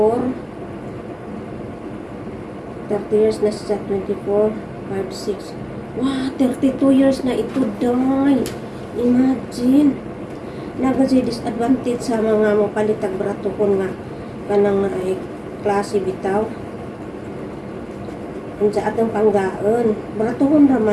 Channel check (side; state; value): both; identical; correlation 1.00